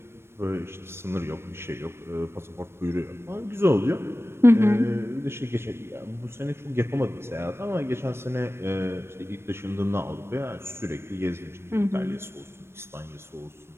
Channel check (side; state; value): left; late; 0.12 ms